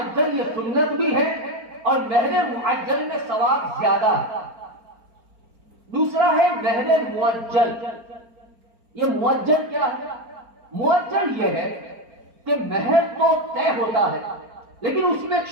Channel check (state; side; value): late; left; 4.4 ms